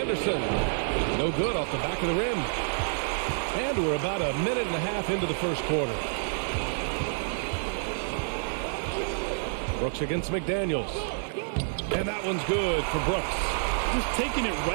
No good off the back of the rim. And we're about a minute and a half into the first quarter. Brooks against McDaniels. And that one's good for Brooks. Just taking it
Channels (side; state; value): left; silent; digital silence